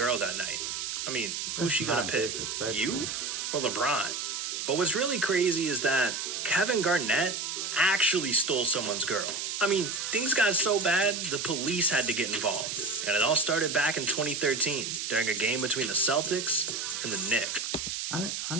that night. I mean, who's she gonna pick? You or LeBron? But what's really crazy is that Kevin Garnett actually stole someone's girl. I mean, things got so bad, the police had to get involved. And it all started back in 2013, during a game between the Celtics and the Knicks. I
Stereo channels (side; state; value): right; noise; hiss, 3 dB below the sound